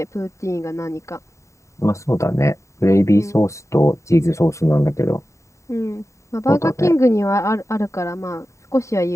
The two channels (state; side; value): late; right; 0.14 ms